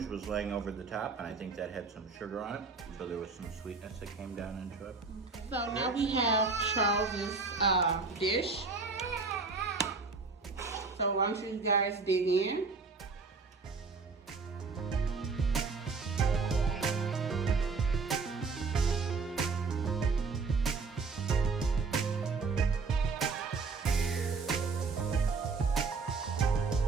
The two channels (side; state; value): left; quieter; 4.5 dB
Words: was laying over the top, and I think that had some sugar on it, so there was some sweetness that came down into it. So now we have Charles's dish. So why don't you guys dig in?